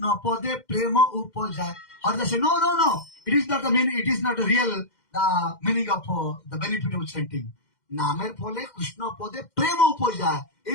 pode prema upajay. Haridas says, no. It is not the meaning. It is not real the meaning of the benefit of chanting. Namer phole Krishna pode prema upajay.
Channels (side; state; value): right; late; 2.1 ms